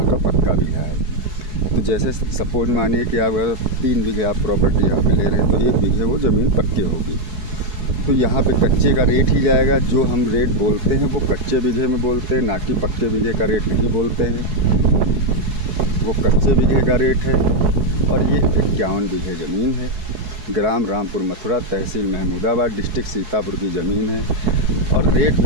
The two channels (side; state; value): left; late; 4.7 ms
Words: का पक्का बीघा है। तो जैसे सपोज मानिए कि आप अगर 3 बीघे आप प्रॉपर्टी यहाँ पे ले रहे हैं तो 1 बीघे वो ज़मीन पक्की होगी। तो यहाँ पे कच्चे का रेट ही जाएगा। जो हम रेट बोलते हैं वो कच्चे बीघे में बोलते हैं, ना कि पक्के बीघे का रेट नहीं बोलते हैं। वो कच्चे बीघे का रेट है। और ये 51 बीघे ज़मीन है। ग्राम रामपुर मथुरा, तहसील महमूदाबाद, डिस्ट्रिक्ट सीतापुर की ज़मीन है। और रेट